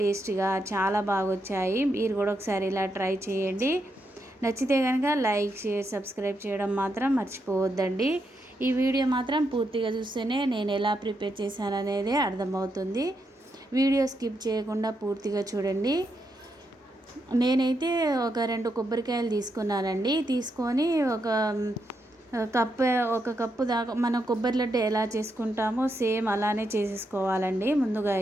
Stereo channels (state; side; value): normal; both; correlation 0.82